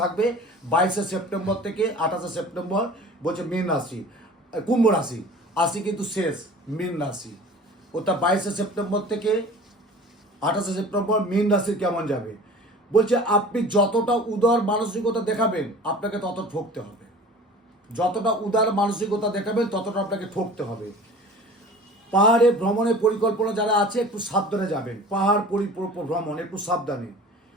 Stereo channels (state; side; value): normal; both; correlation 0.42